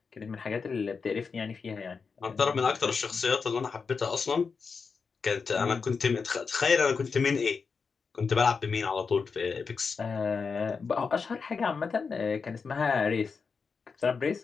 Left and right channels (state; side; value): quieter; right; 5.2 dB